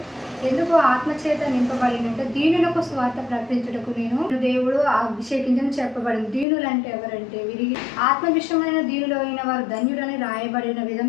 ఎందుకు ఆత్మచేత నింపబడిందంటే దీనులకు స్వార్థ ప్రకటించుటకు నేను దేవుడు అభిషేకించని చెప్పబడింది. దీనులు అంటే ఎవరంటే విరిగి ఆత్మ విషయమైన దీనులు అయిన వారు ధన్యులని రాయబడిన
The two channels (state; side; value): drops out; right; at 6.5 s